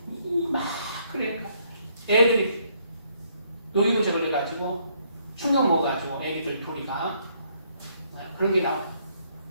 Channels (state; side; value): inverted; both; correlation -0.69